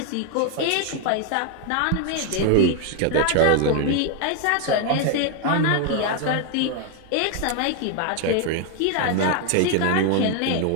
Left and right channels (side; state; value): both; different; correlation 0.00